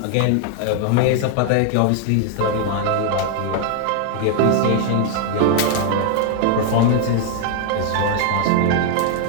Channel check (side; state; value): both; different; correlation 0.00